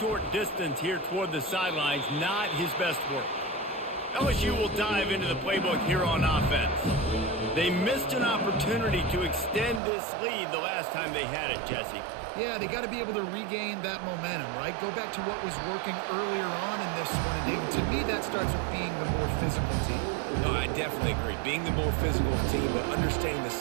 distance here toward the sidelines, not his best work. LSU will dive into the playbook here on offense. They missed an opportunity to extend this lead the last time they had it, Jesse. Yeah, they got to be able to regain that momentum, right? Go back to what was working earlier on in this one. And to me, that starts with being the more physical team. No, I definitely agree. Being the more physical team, but understanding the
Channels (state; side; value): drops out; left; at 9.8 s